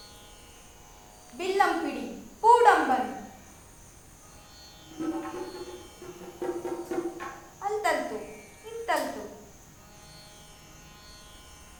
ಬಿಲ್ಲಂ ಪಿಡಿ ಪೂಡಂಬನ್. ಅಂತಲ್ತು ಇಂತಲ್ತು.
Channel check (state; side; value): identical; both; correlation 1.00